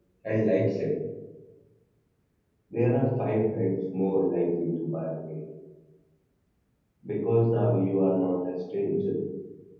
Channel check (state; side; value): identical; both; correlation 1.00